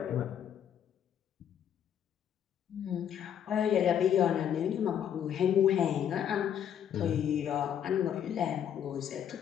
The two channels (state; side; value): quieter; right; 9.3 dB